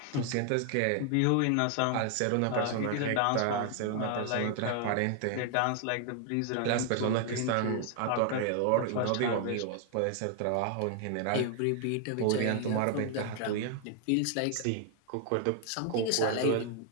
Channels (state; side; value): different; both; correlation 0.00